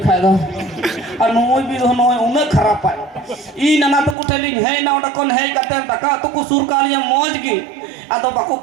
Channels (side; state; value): left; drops out; at 4.2 s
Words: खाए दो और नोई भी नोई उन्हें खराब पाए ई नना तो कुटेलिंग है ना ओटा कौन है कते तका तो को सुर कालिया मौज की atau baku